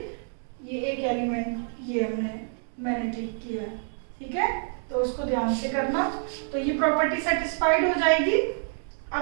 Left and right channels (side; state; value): left; silent; 55 dB below the other